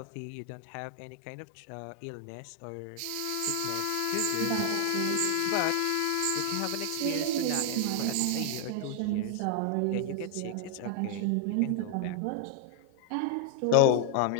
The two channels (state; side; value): different; both; correlation 0.00